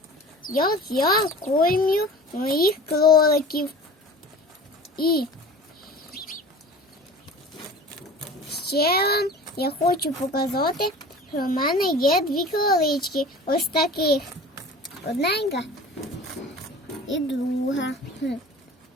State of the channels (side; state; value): both; normal; correlation 0.40